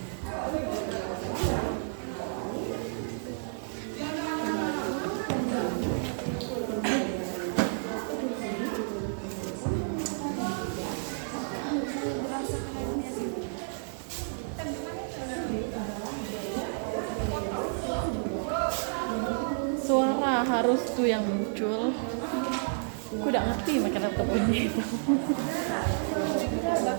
Suara harus tuh yang muncul. Aku udah ngerti makan laptop ini. Tidak,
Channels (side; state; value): left; silent; digital silence